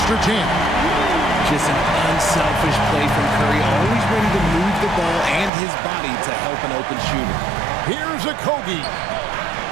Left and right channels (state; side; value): drops out; left; at 5.5 s